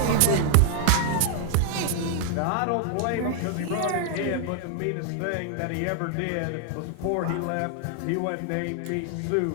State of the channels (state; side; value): different; both; correlation 0.00